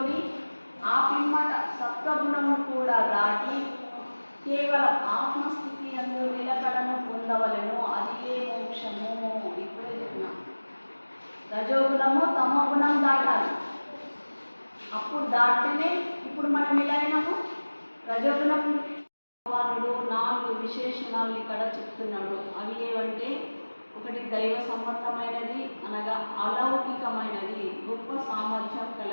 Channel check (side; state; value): both; inverted; correlation -1.00